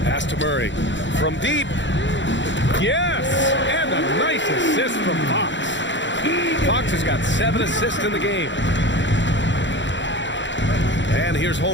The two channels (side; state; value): right; late; 0.54 ms